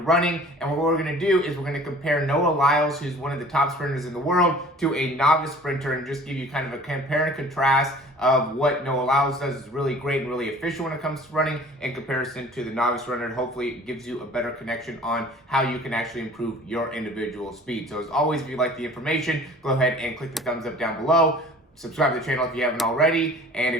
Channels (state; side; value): normal; both; correlation 0.47